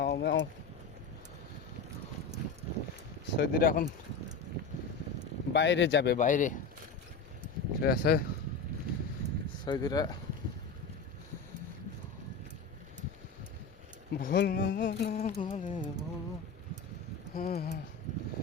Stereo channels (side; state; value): right; quieter; 4.4 dB